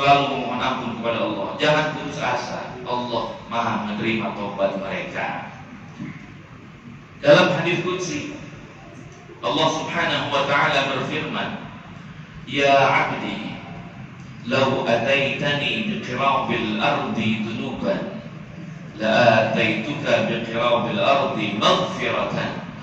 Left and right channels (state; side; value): identical; both; correlation 1.00